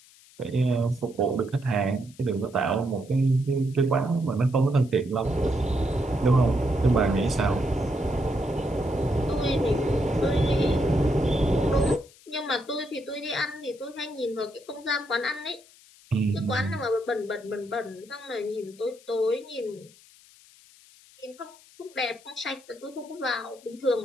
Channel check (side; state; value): left; noise; hiss, 25 dB below the sound